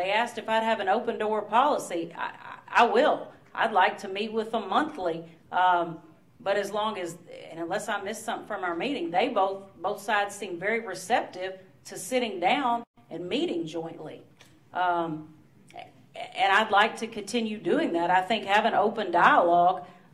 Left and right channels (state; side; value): identical; both; correlation 1.00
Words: asked if I'd have an open door policy. I will. I'd like to meet with them monthly. But as long as, and unless I miss something from our meeting, they both sides seem very receptive to sitting down and meeting jointly. And I'd like to continue doing that. I think having open dialogue